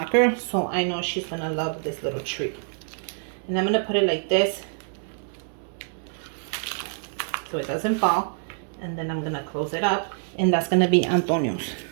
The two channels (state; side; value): silent; left; 61 dB below the other